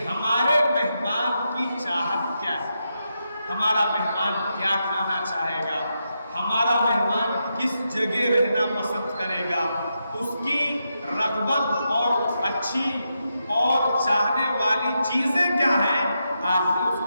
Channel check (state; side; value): inverted; both; correlation -0.85